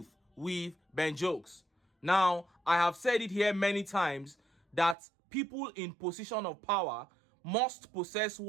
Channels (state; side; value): drops out; left; at 5.0 s